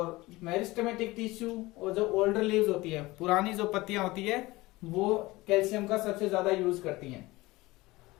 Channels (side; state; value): right; quieter; 20.3 dB